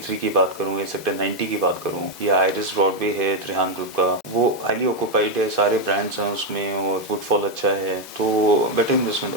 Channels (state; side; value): normal; both; correlation 0.02